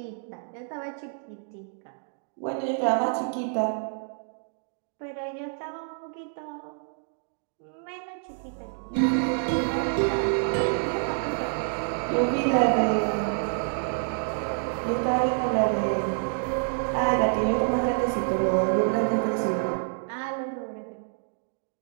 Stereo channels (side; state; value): left; silent; 60 dB below the other